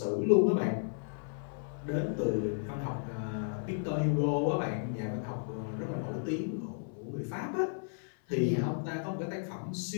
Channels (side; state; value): right; silent; 55 dB below the other